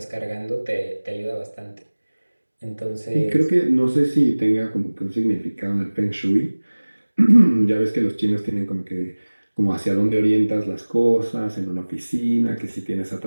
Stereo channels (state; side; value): inverted; both; correlation -1.00